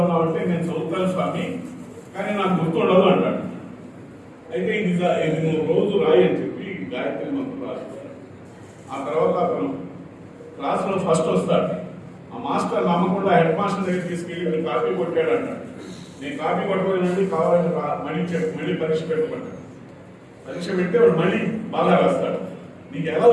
ఉన్నావు అంటే, నేను చదువుతాను స్వామి కానీ నాకు గుర్తుండదు అంటాడు. అయితే ఇది నువ్వు రోజు రాయి అని చెప్పి గాయత్రి మంత్రం రాస్తాడు. ఆ తర్వాత అతను క్లాసులో ఫస్ట్ వస్తాడు. ఆ మాస్టర్ నమ్మకుండా హెడ్ మాస్టర్ దగ్గర తీసుకెళ్ళి మీరు కాపీ కొట్టాడు అంటాడు. నేను కాపీ కొట్టలేనండి, కావాలని మళ్ళీ పరీక్ష పెట్టుకుంటాడు. పరీక్ష పెడితే వాడు మళ్ళీ బాగా రాస్తాడు. నీకు ఎలా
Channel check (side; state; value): both; identical; correlation 1.00